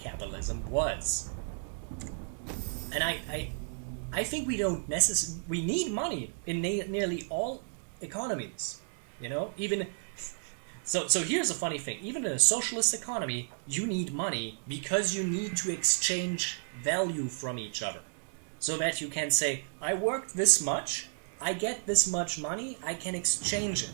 was. And I think we don't necessarily... We need money in nearly all economies, you know? Even... So here's a funny thing. Even in a socialist economy, you need money because you need to exchange value from each other. So that you can say, I worked this much, I get this much money, I can exchange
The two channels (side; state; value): left; silent; digital silence